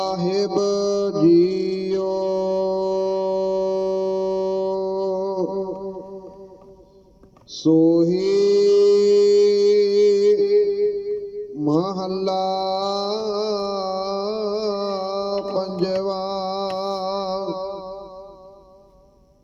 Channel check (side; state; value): both; identical; correlation 1.00